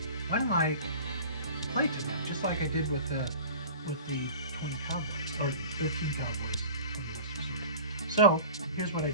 why don't I play to them, just like I did with the 20 Cowboys, or 13 Cowboys. So, here's what I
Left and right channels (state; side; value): inverted; both; correlation -0.40